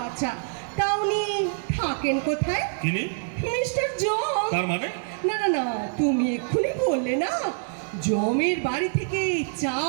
আচ্ছা, তা উনি থাকেন কোথায়? চিনি। মিস্টার জম। তার মানে? না না না, তুমি এক্ষুনি বললে না জমের বাড়ি থেকে চা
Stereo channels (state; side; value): silent; left; 61 dB below the other